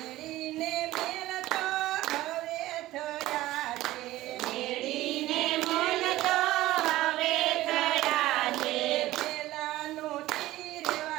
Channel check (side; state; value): left; quieter; 16.4 dB